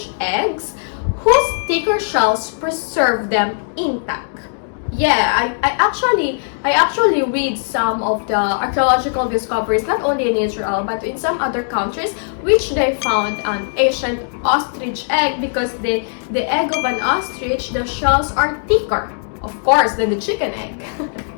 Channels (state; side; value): silent; right; digital silence